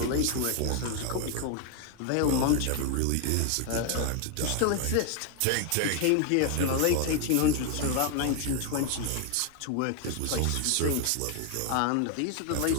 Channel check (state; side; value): different; both; correlation 0.00